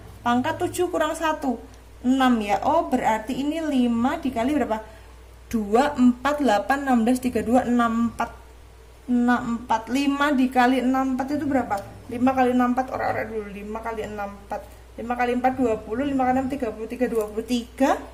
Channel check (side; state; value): both; identical; correlation 1.00